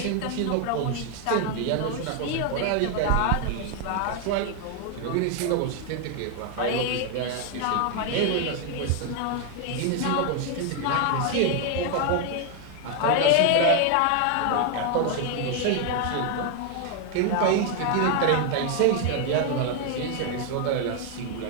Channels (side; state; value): both; different; correlation 0.00